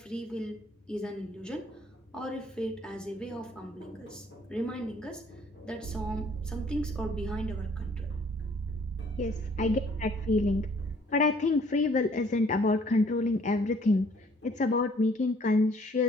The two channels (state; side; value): normal; both; correlation 0.59